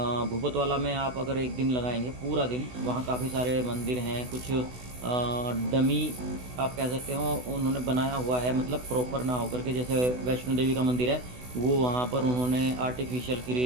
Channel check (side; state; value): left; late; 16 ms